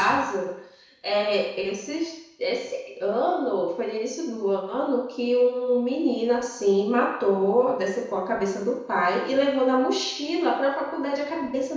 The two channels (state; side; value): identical; both; correlation 1.00